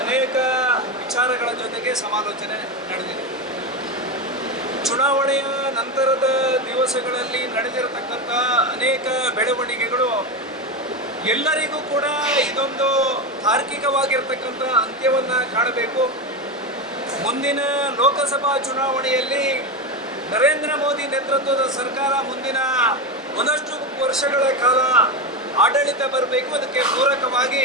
ಅನೇಕ ವಿಚಾರಗಳ ಜೊತೆಗೆ ಸಮಾಲೋಚನೆ ನಡೆದಿದೆ. ಚುನಾವಣೆಯ ನಂತರದ ದಿವಸಗಳಲ್ಲಿ ನಡೆದಿರತಕ್ಕಂಥ ಅನೇಕ ಬೆಳವಣಿಗೆಗಳು ಎಲ್ಲರಿಗೂ ಕೂಡ ಇದೊಂದು ತಾರ್ಕಿಕವಾಗಿರ್ತಕ್ಕಂಥ ಅಂತ್ಯವನ್ನು ಕಾಣಬೇಕು. ಮುಂದಿನ ಲೋಕಸಭಾ ಚುನಾವಣೆಯಲ್ಲಿ ನರೇಂದ್ರ ಮೋದಿ ನೇತೃತ್ವದ ಸರ್ಕಾರ ಮುಂದಿನ ಒಂದಷ್ಟು ವರ್ಷಗಳ ಕಾಲ ಆಡಳಿತ ಬರಬೇಕು. ಅದಕ್ಕೆ ಪೂರಕವಾಗಿ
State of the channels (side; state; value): both; normal; correlation 0.16